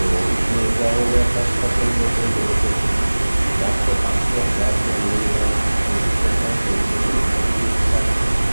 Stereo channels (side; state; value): both; inverted; correlation -1.00